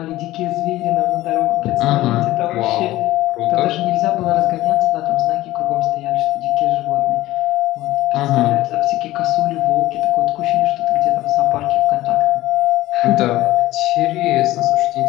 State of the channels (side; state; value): right; quieter; 16.5 dB